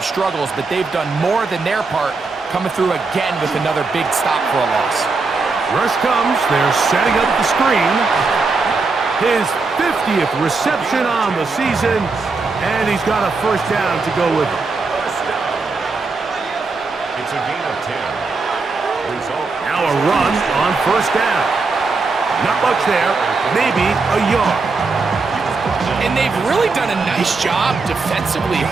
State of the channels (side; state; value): left; quieter; 4.1 dB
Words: struggles, but they've done more than their part, coming through again with another big stop for a loss. Rush comes. They're setting up the screen. His 50th reception on the season, and he's got a 1st down to go with him. It's a gain of 10. Result. Now a run on 1st down. Not much there, maybe a yard. And they've really done a nice job defensively